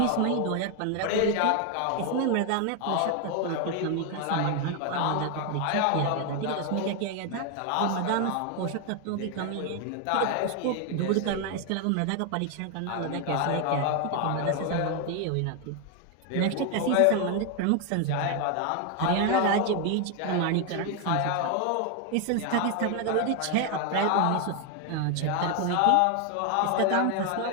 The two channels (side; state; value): both; different; correlation 0.01